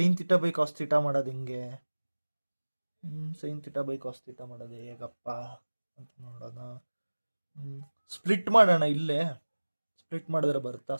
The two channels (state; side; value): inverted; both; correlation -1.00